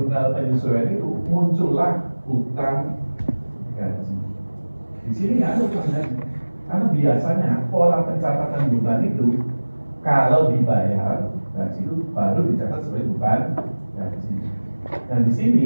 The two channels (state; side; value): inverted; both; correlation -1.00